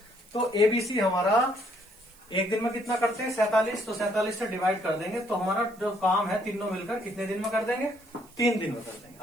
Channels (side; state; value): right; noise; hiss, 26 dB below the sound